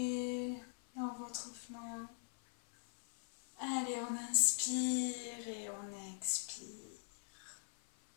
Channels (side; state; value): right; silent; 50 dB below the other